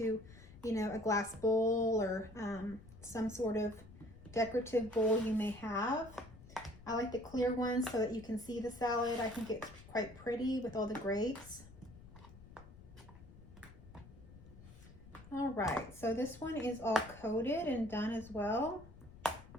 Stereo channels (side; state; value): left; noise; rumble, 19 dB below the sound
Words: you know, a glass bowl or some sort of decorative bowl you may have. I like the clear ones so that you can see the salad. I think it's quite pretty with all the grapes. All right, so this one is all coated and done as well.